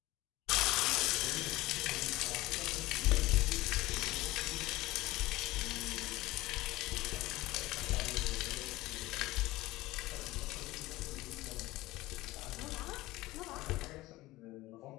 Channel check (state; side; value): quieter; right; 18.5 dB